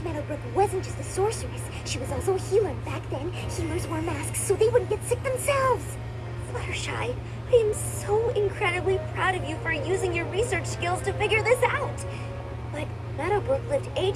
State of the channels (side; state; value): both; identical; correlation 1.00